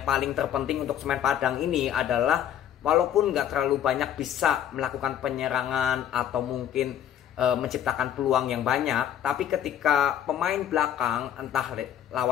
paling terpenting untuk Semen Padang ini adalah walaupun nggak terlalu banyak bisa melakukan penyerangan atau mungkin menciptakan peluang yang banyak, tapi ketika pemain belakang entah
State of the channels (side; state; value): right; quieter; 10.3 dB